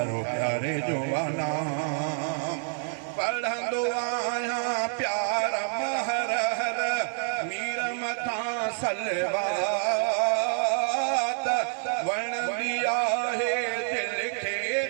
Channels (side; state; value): left; silent; digital silence